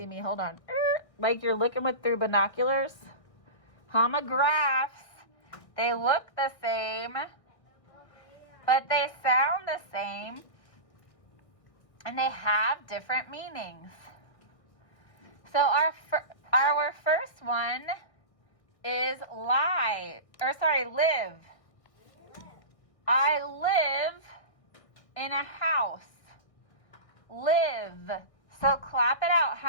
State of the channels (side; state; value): right; late; 1.6 ms